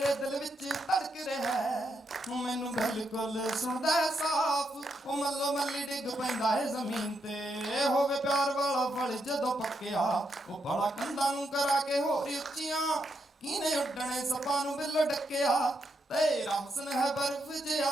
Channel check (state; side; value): normal; both; correlation 0.80